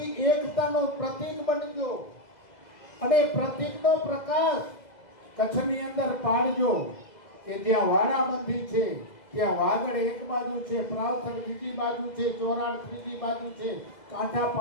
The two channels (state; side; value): late; right; 2.0 ms